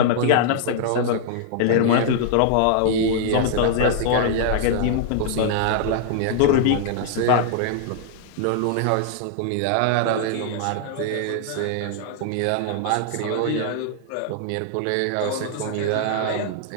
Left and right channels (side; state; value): both; different; correlation -0.01